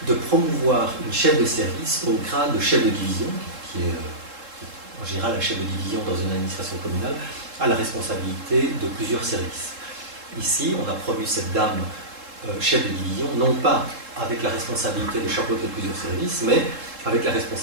promouvoir une chef de service au grade de chef de division, qui est en général un chef de division dans une administration communale, à la responsabilité de plusieurs services. Ici, on a promu cette dame chef de division, non pas avec la responsabilité de chapeauter plusieurs services, mais avec la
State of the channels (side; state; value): left; late; 3.7 ms